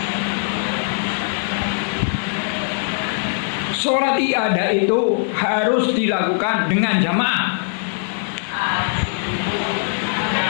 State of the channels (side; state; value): right; silent; digital silence